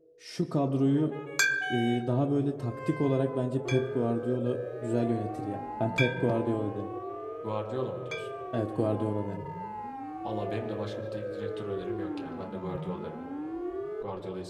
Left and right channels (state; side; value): identical; both; correlation 1.00